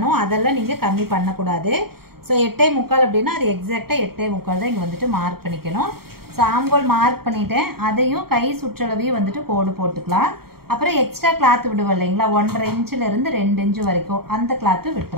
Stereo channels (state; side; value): late; left; 0.94 ms